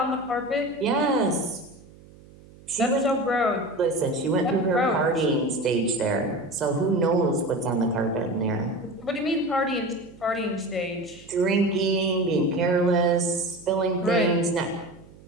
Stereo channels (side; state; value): right; noise; hum, 23 dB below the sound